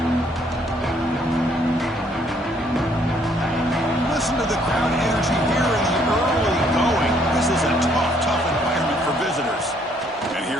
Listen to the crowd energy here in the early going. This is a tough environment for visitors. And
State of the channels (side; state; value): both; normal; correlation 0.66